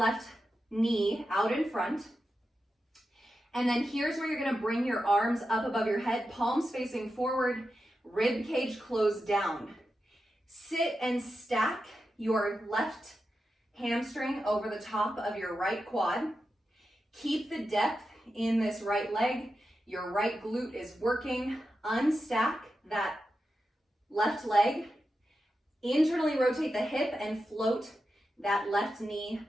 knee out in front, and then here's where you're gonna bring your arms up above your head, palms facing forward, rib cage closed down. Sit and stack your left hamstring over the top of your right quad. Keep the depth in this right leg. Your right glute is working. Unstack that left leg. Internally rotate the hip and float that left knee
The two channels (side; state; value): both; normal; correlation 0.90